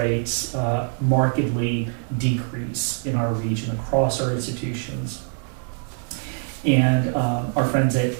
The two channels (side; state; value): left; silent; 55 dB below the other